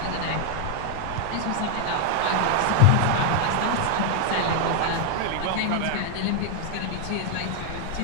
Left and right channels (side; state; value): both; different; correlation 0.00